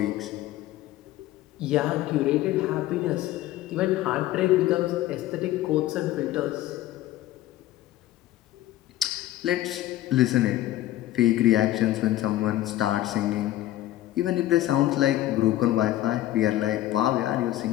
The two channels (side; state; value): right; quieter; 14.7 dB